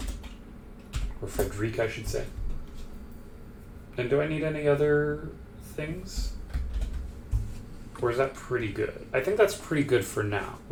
Or Frederic, I should say. And do I need any other things? Or is that pretty good? I think that's pretty good for now.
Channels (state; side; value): identical; both; correlation 1.00